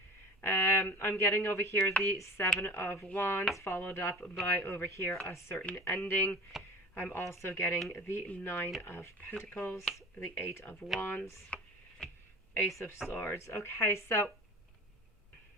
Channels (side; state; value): both; normal; correlation 0.37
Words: I'm getting over here the Seven of Wands, followed up by over here a certain ending. I'm also getting the Nine of Pentacles, the Eight of Wands, Ace of Swords. Okay, so